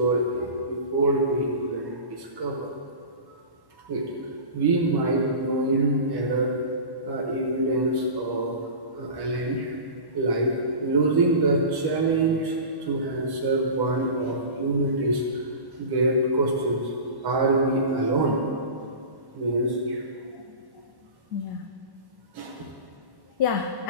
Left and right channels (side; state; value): left; late; 1.1 ms